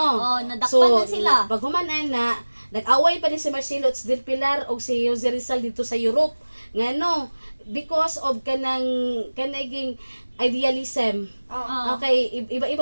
Nadakpan na sila. Pag humanan na nag-away pa ni si Marcelo H. del Pilar o si Jose Rizal dito sa Europe. Ngano because of kanaging idealism. Okay,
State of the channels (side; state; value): both; inverted; correlation -1.00